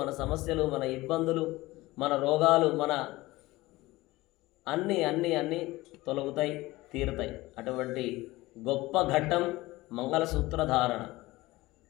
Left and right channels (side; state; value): right; quieter; 19.4 dB